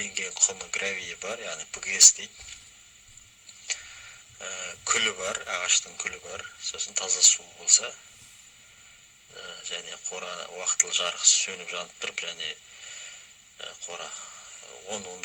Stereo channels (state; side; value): identical; both; correlation 1.00